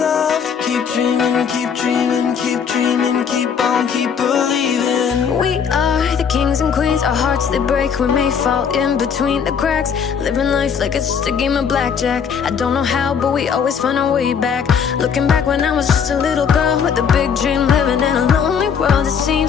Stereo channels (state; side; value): quieter; right; 7.0 dB